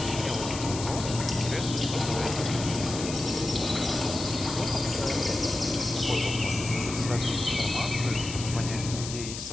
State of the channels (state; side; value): noise; left; hiss, 8 dB below the sound